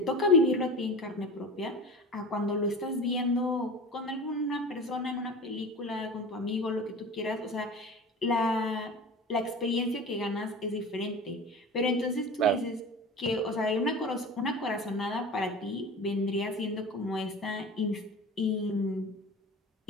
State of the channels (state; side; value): normal; both; correlation 0.34